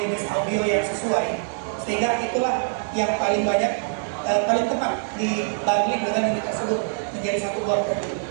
jenis audio yang sesuai, sehingga itulah yang paling banyak paling tepat dibanding dengan unit tersebut menjadi satu buah produk.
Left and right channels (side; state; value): left; silent; 63 dB below the other